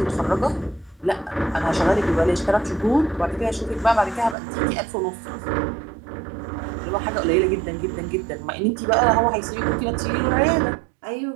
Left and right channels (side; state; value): left; drops out; at 4.4 s